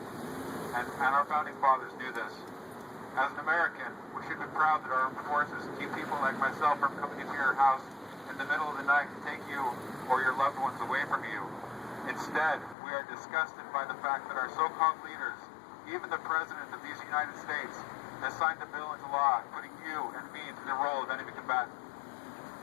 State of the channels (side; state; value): right; drops out; at 12.8 s